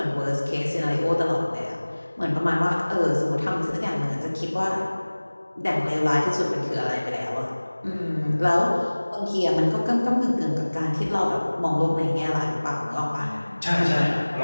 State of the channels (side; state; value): both; inverted; correlation -1.00